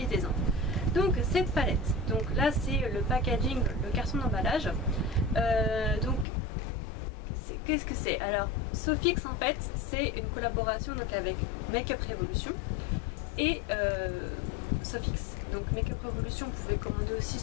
Donc cette palette, donc là c'est le packaging, le carton d'emballage. Donc qu'est-ce que c'est? Alors Sofix en fait c'est une collaboration donc avec Makeup Revolution et Sofix. Donc Makeup Revolution, vous pouvez commander aussi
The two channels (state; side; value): drops out; right; at 6.2 s